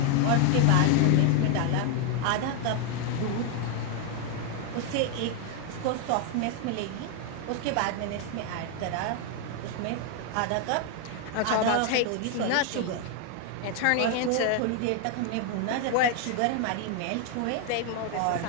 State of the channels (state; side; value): different; both; correlation 0.01